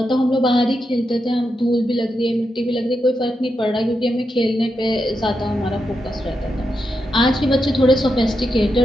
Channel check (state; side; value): normal; both; correlation 0.86